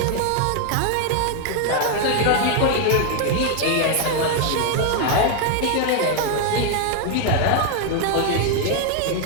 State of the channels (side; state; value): both; different; correlation 0.00